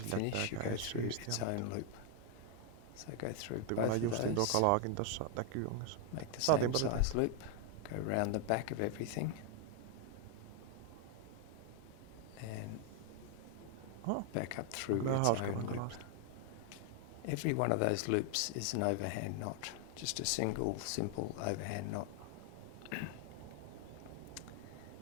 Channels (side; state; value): both; different; correlation 0.00